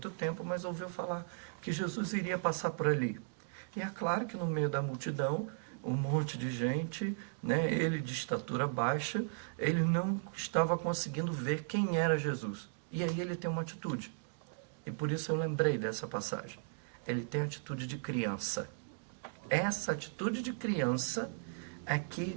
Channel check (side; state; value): left; silent; digital silence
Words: tempo, mas ouviu falar que Jesus iria passar por ali. E é claro que no meio da multidão, um monte de gente, né, ele de estatura baixa, ele não estava conseguindo ver quem era Jesus. E aí ele tem uma atitude. E por isso eu lembrei dessa passagem. Ele tem a atitude de criança. Essa atitude de criança é